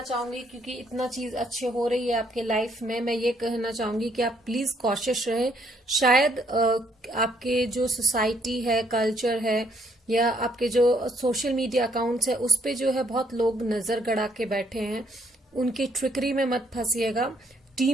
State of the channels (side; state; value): both; normal; correlation 0.69